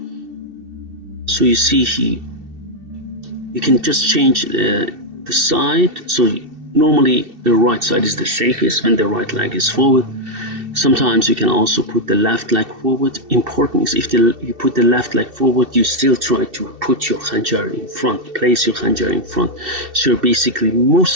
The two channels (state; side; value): late; left; 2.7 ms